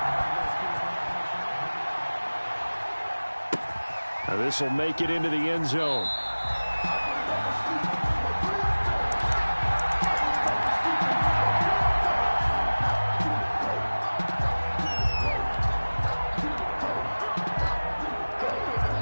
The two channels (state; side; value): inverted; both; correlation -1.00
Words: Now this will make it into the end zone.